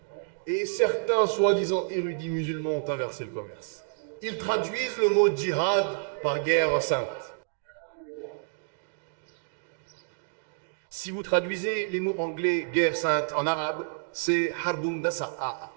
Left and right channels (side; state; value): left; silent; digital silence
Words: et certains soi-disant érudits musulmans ont inversé le commerce. Ils traduisent le mot djihad par guerre sainte. Si vous traduisez les mots anglais guerre sainte en arabe, c'est harbun dasa'a.